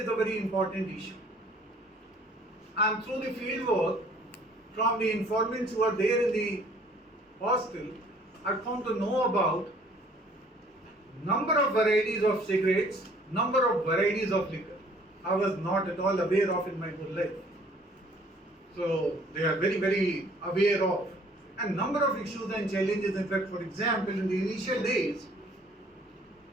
is a very important issue. And through the field work, from the informants who are there in the hostel, I come to know about number of varieties of cigarettes, number of varieties of liquor. I was not at all aware of in my whole life. So they are very, very aware of. And number of issues and challenges. In fact, for example, in the initial days,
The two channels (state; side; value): normal; both; correlation 0.57